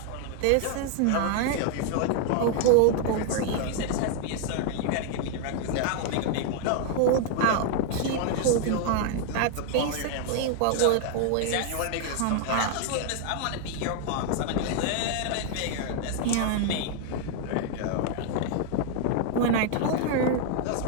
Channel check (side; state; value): both; different; correlation 0.00